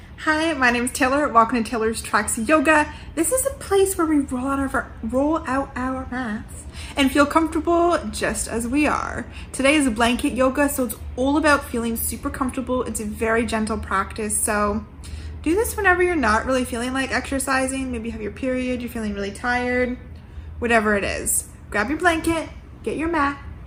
Hi, my name is Taylor. Welcome to Taylor's Tracks Yoga. This is a place where we roll out our mats and feel comfortable just as we are. Today is a blanket yoga, so it's all about feeling super comfortable. It's a very gentle practice, so do this whenever you're not really feeling like exercising. Maybe you have your period, you're feeling really tired, whatever it is. Grab your blanket, get your mat,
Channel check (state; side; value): identical; both; correlation 1.00